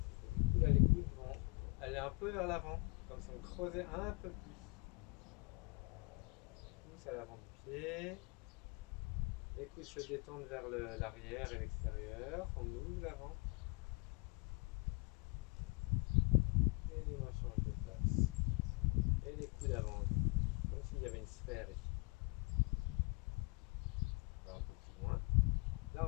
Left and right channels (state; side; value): quieter; right; 27.9 dB